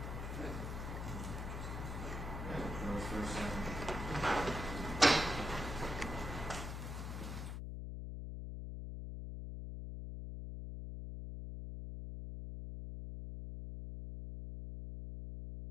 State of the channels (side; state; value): left; noise; hum, 4 dB below the sound